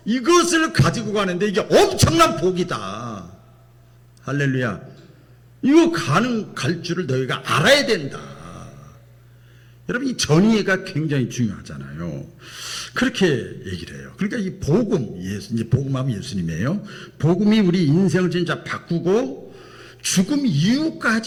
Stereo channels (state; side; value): identical; both; correlation 1.00